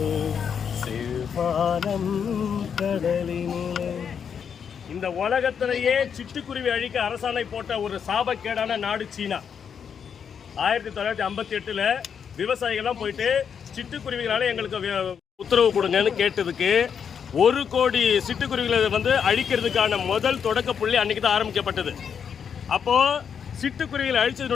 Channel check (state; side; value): quieter; right; 7.3 dB